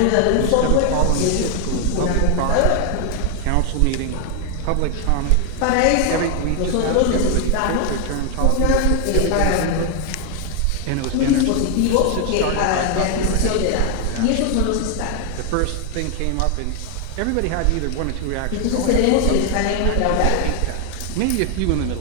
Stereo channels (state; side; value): different; both; correlation 0.00